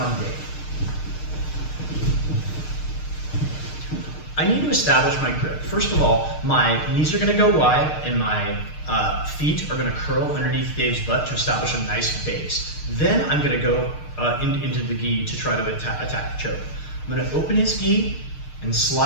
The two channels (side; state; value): right; late; 6.6 ms